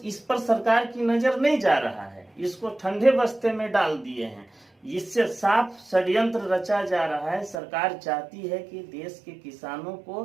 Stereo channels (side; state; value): left; drops out; at 7.6 s